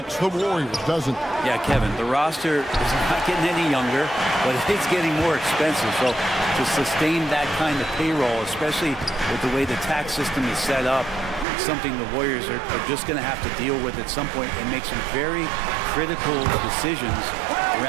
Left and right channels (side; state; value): left; drops out; at 11.5 s